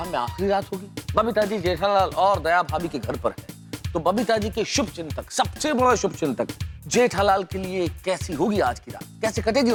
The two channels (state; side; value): identical; both; correlation 1.00